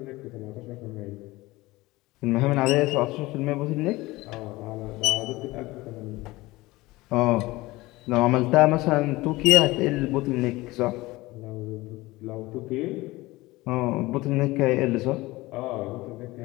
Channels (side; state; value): right; quieter; 20.0 dB